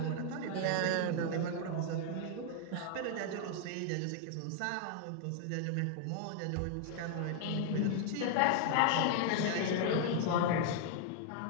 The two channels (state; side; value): different; both; correlation 0.00